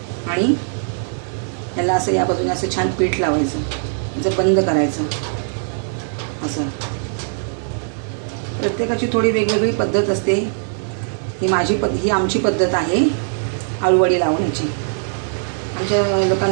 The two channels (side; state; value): left; silent; digital silence